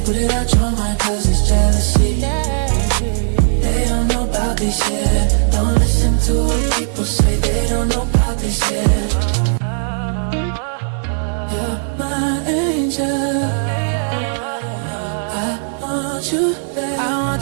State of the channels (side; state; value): left; silent; digital silence